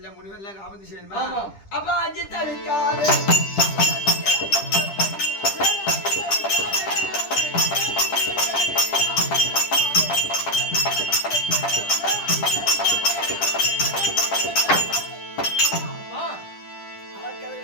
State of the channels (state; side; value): late; right; 10 ms